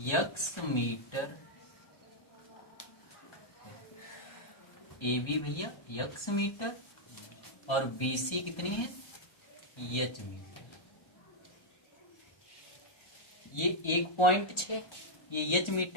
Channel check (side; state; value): right; late; 1.3 ms